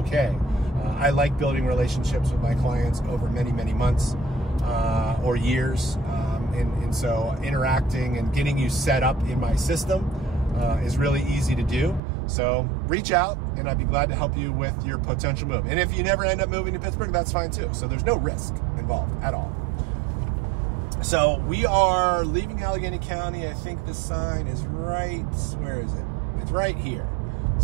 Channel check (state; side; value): drops out; left; at 12.0 s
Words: I like building relationships with my clients over many, many months or years. And so interacting and getting you set up in my system is really easy to do. So reach out and I'd be glad to help you with your potential move. And if you never end up moving to Pittsburgh, that's fine too. So there's no risk involved at all. So we are leaving Allegheny County. I think the sign is right, where is it? It's right here.